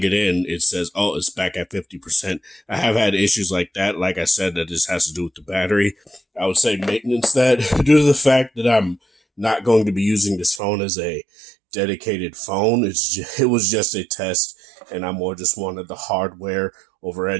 it in, it says, oh, it's back at 50%. I have had issues like that. Like I said, that just has to do with the battery. I would say maintenance that due to the fact that I'm not going to be using this phone as a dedicated phone. It was just a test, and I more just wanted the hardware over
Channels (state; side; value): drops out; left; at 10.6 s